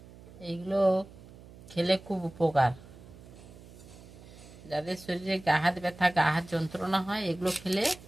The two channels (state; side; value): noise; right; hum, 19 dB below the sound